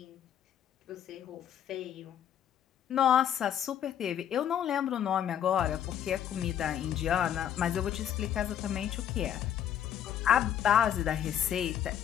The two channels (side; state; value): right; quieter; 9.9 dB